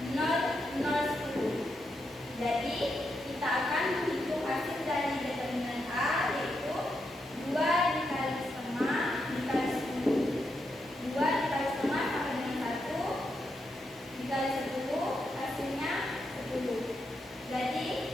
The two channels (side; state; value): both; normal; correlation 0.83